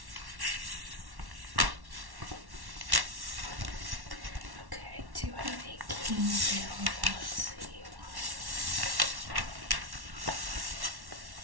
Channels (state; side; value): late; left; 1.1 ms